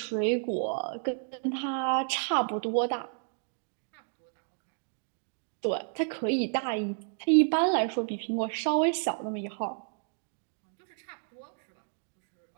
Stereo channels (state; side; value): silent; left; 57 dB below the other